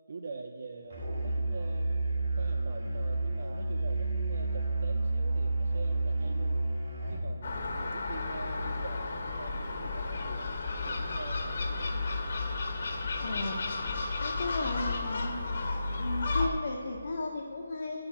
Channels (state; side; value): inverted; both; correlation -0.86